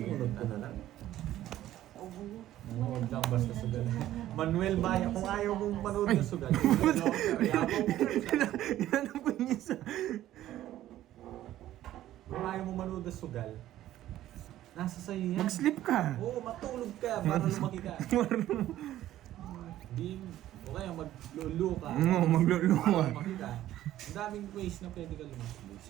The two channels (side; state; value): left; quieter; 13.5 dB